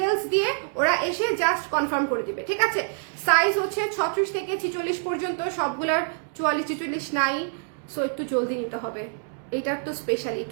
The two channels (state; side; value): silent; left; digital silence